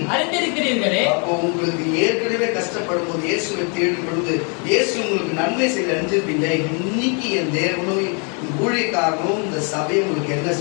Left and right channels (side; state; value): right; quieter; 36.8 dB